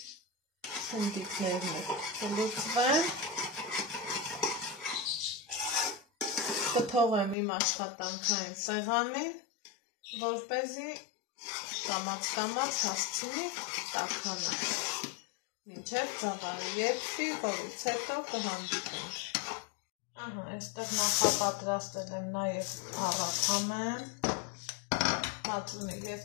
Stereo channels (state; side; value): drops out; right; at 7.4 s